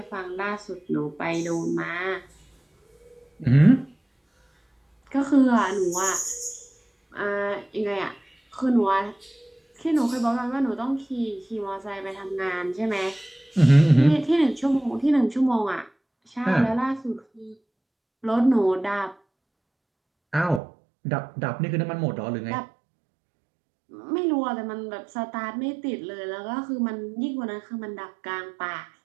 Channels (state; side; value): drops out; left; at 20.6 s